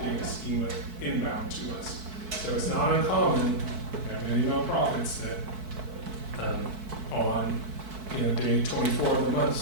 data schema inbound to us. So it's not uncommon, we have many nonprofits that on day 24 of the month,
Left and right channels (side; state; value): left; late; 4.6 ms